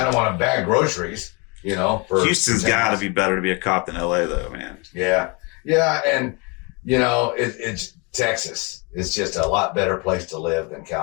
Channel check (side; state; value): right; quieter; 30.7 dB